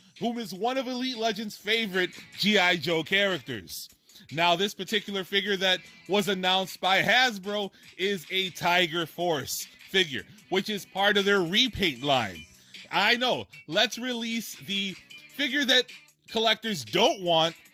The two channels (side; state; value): both; identical; correlation 1.00